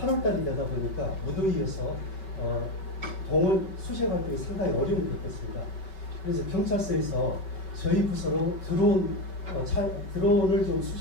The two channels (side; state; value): right; late; 5.3 ms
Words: 되다 보니까 무더위여서 동원 수색 활동이 상당히 어려움을 겪었습니다. 그래서 경찰서에서 저희 부서로 드론을 좀